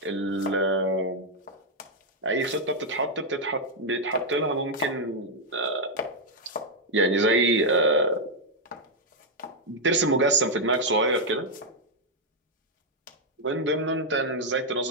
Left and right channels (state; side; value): normal; both; correlation -0.01